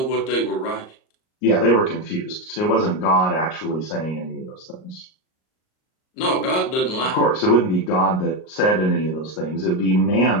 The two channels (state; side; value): late; right; 38 ms